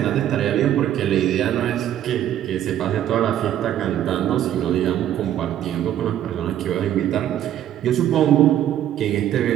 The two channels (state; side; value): quieter; left; 11.3 dB